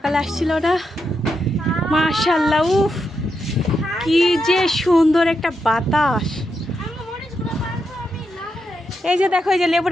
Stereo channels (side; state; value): both; normal; correlation 0.84